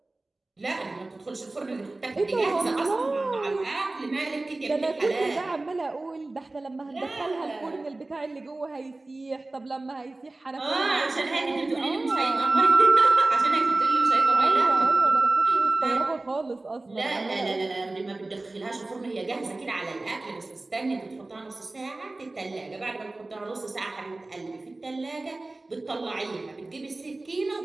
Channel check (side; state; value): left; quieter; 3.0 dB